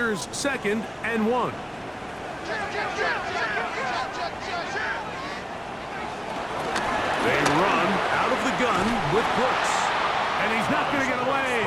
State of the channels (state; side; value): identical; both; correlation 1.00